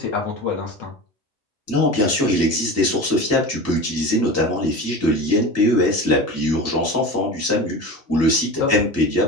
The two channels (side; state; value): both; normal; correlation 0.30